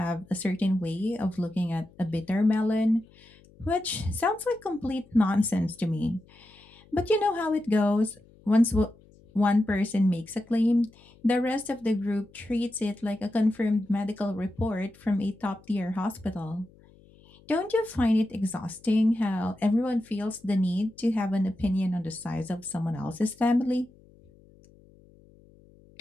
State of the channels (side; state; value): left; noise; hum, 27 dB below the sound